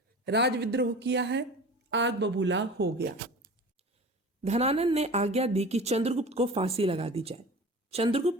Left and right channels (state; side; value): normal; both; correlation 0.37